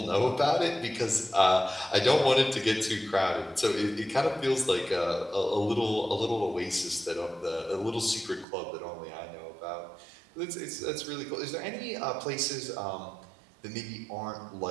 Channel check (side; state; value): left; drops out; at 8.5 s